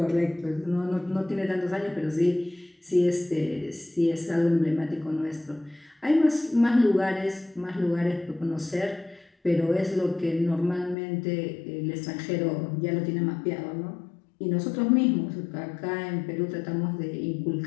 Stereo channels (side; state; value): right; drops out; at 11.0 s